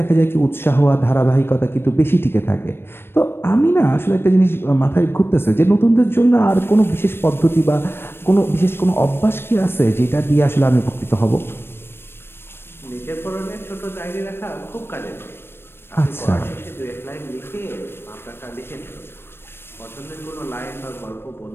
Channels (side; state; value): right; late; 0.11 ms